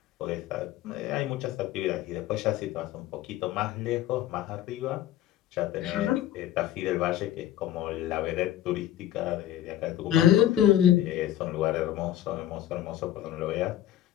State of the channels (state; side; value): quieter; right; 12.4 dB